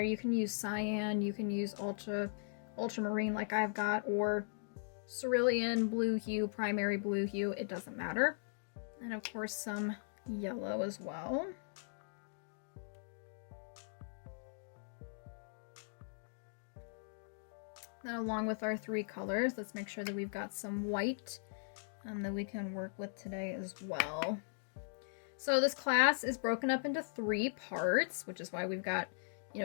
You can use cyan, you can use ultramarine like I've got, or cerulean blue hue, primary blue hue. It doesn't matter. And of course some yellow as well. Then along with our 3 colors, let's make sure that we've got some white that we can work with today as well. So this class is broken up into 3 parts, which is why we've got,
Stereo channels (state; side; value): silent; right; digital silence